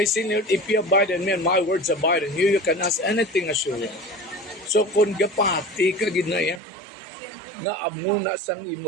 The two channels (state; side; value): drops out; left; at 6.6 s